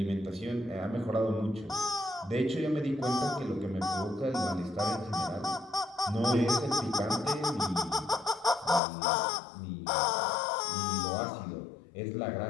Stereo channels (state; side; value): drops out; right; at 8.8 s